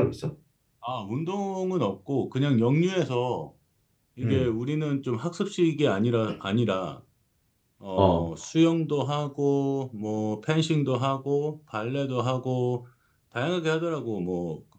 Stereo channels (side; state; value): both; identical; correlation 1.00